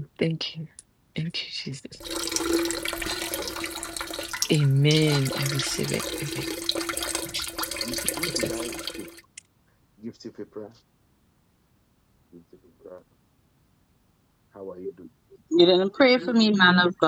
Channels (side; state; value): both; identical; correlation 1.00